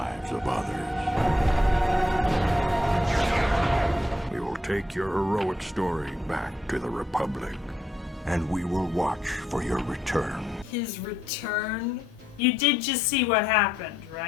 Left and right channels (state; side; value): normal; both; correlation 0.77